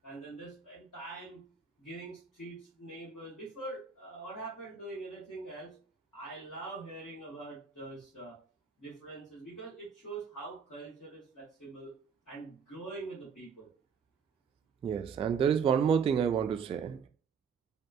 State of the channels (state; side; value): quieter; left; 6.5 dB